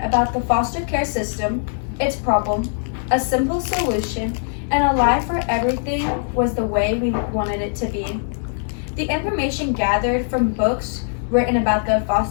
about the foster care system, its problem, a simple solution, and a life where everything was the way we wanted it to be. The information gathered from books written about the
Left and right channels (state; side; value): silent; right; 65 dB below the other